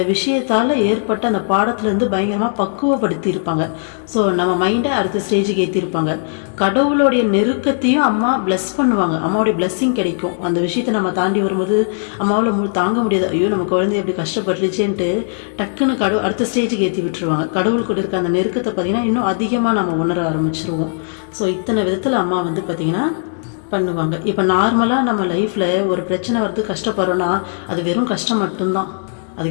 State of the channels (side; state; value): right; silent; digital silence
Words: விஷயத்தால் ஏற்பட்ட அந்த பாடத்துலேருந்து பயங்கரமாக பக்குவப்படுத்தி இருப்பாங்க. ஸோ நம்ம மைண்டை அடுத்த ஸ்டேஜுக்கு ஏற்றிருப்பாங்க. கடவுளுடைய நெருக்கத்தையும் அம்மா பிளஸ் பண்ணுவாங்க, அம்மாவுடைய பிளஸ்ஸிங் கிடைக்கும். அந்த விஷயத்தை நம்ம தாண்டி வரும்போது அம்மாவில் தாங்க முடியாது, ஐயோ நம்ம குழந்தை எப்படி கஷ்டப்பட்டுருச்சேன்ட்டு டக்குன்னு அடுத்த ஸ்டேஜுக்கு ஏற்றி விட்டுருவாங்க. கடவுள் கூட இருக்க அந்த நெருக்கத்தை பார்த்தீங்கன்னா இன்னும் அதிகமாக நம்ம உணர ஆரம்பிச்சிருவோம். ஸோ இத்தனை விதத்தில் அம்மா பார்த்தீங்கன்னா பண்ணுவாங்க. இப்போ நார்மலாக நம்ம லைஃப்பில் ஒரு பிரச்சனை வரது கஷ்டப்படுறோன்னா அது வெறும் கஷ்டம் மட்டும்தான்,